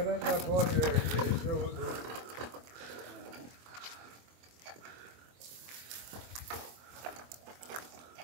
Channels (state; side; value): late; left; 24 ms